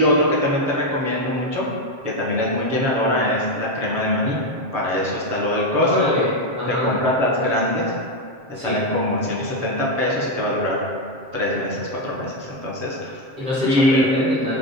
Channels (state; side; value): late; left; 7.5 ms